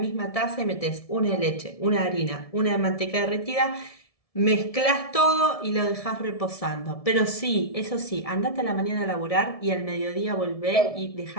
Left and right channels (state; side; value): late; right; 1.7 ms